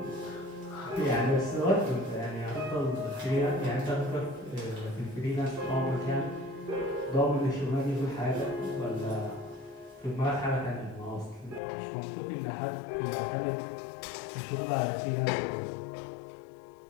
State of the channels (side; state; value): right; drops out; at 11.6 s